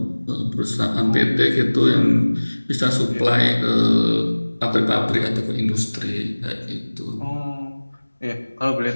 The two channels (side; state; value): both; inverted; correlation -1.00